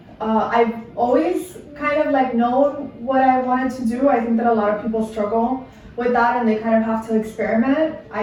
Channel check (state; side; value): identical; both; correlation 1.00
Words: I've always kind of like known what I wanted to do. I think that a lot of people struggle with that and they kind of have to experiment.